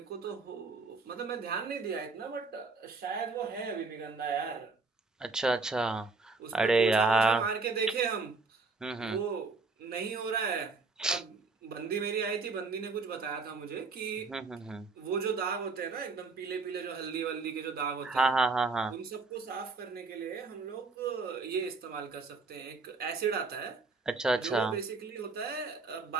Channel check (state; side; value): quieter; left; 4.0 dB